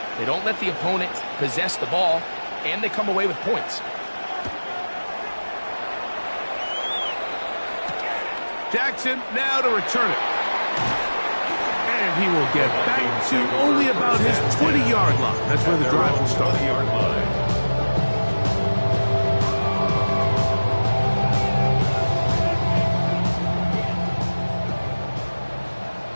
They don't let the opponent possess the ball, and they come away with points. Jackson now to return it. And he will get back to only about his 20-yard line. That's where the drive will start. 20-yard line.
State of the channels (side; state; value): both; inverted; correlation -1.00